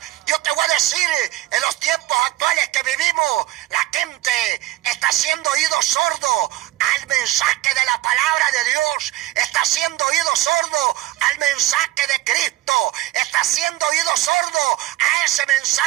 Yo te voy a decir, en los tiempos actuales que vivimos, la gente está haciendo oído sordo al mensaje de la palabra de Dios, está haciendo oído sordo al mensaje de Cristo, está haciendo oído sordo a ese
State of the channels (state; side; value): quieter; left; 16.1 dB